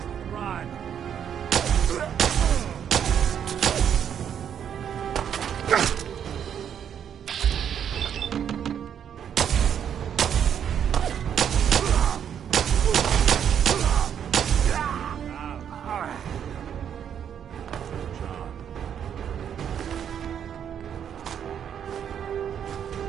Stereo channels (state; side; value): quieter; left; 8.7 dB